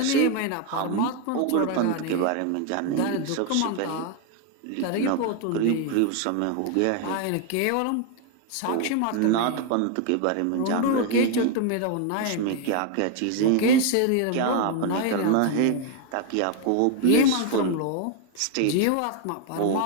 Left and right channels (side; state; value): both; different; correlation 0.01